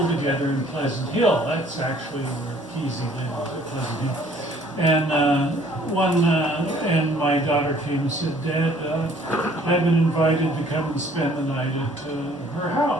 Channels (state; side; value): normal; both; correlation 0.58